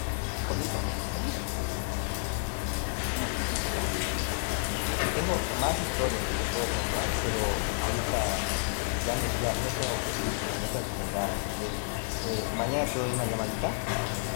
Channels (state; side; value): silent; right; digital silence